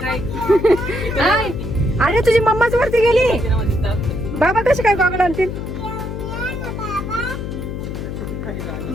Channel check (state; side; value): noise; left; hum, 6 dB below the sound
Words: हाय. अरे तुझी मम्माच वरती गेली, बाबा कशी काय गॉगल आणतील?